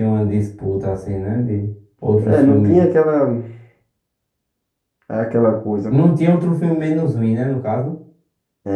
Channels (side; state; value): both; identical; correlation 1.00